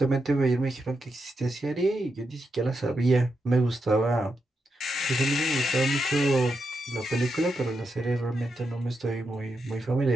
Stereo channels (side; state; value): both; normal; correlation 0.85